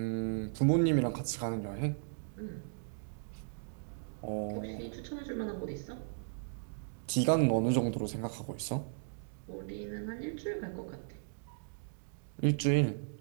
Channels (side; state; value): left; silent; digital silence